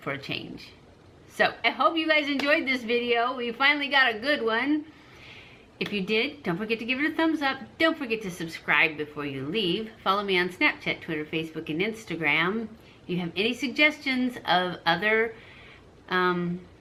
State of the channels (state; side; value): identical; both; correlation 1.00